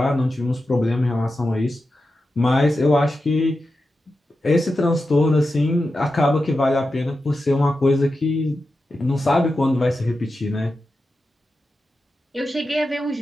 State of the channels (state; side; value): normal; both; correlation 0.91